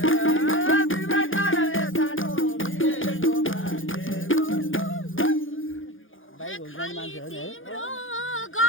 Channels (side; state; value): right; late; 0.58 ms